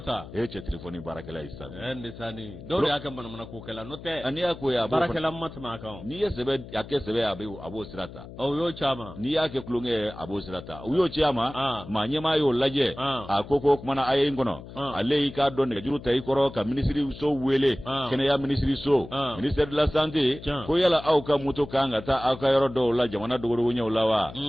cɛ téléphone baarakɛla yi sa ndisani dɔw y'a kɛ manamana ko kɛla n'o tɛ ani y'a ko ya baarakɛla ma tɛmɛ a kan n'i ye sɛbɛ a kɛ sɛbɛ a b'o sira ta o y'o caman n'i y'a kɛ kulonkɛ ye a b'o sira ta u y'o ci a ma maa ɲɛmaa y'o lajɛ a ko kumana a ye n kɔnɔ ale y'i k'a dɔn nɛgɛjuru ta i kɔrɔ ka ministre so wele kɛnɛya ministre so ministère de la santé ko yala aw ka moto kan ka taa aw ka yɔrɔ dɔw la jamana dogodogo ɲɛw la wa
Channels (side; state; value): left; noise; hum, 15 dB below the sound